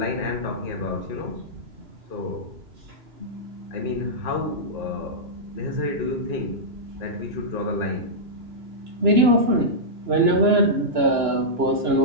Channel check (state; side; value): late; left; 2.9 ms